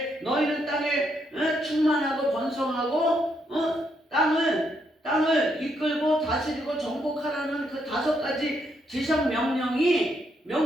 너희는 땅에 충만하고 번성하고 땅을 이끌고 다스리고 정복하라는 그 5가지 지상 명령을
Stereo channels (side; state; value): both; normal; correlation 0.76